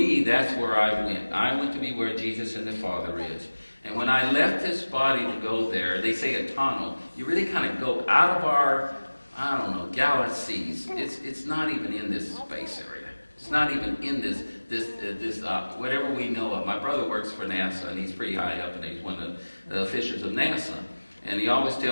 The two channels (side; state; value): both; inverted; correlation -1.00